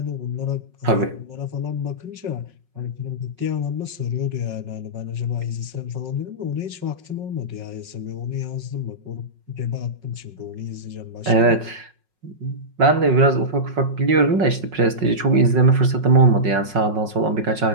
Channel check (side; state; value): left; late; 5.5 ms